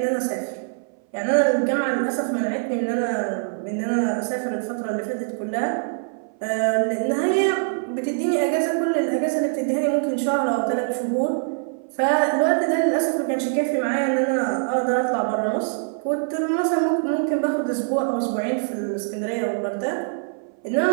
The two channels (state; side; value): silent; left; 59 dB below the other